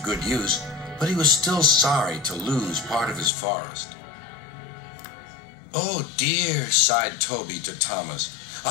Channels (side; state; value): right; drops out; at 3.3 s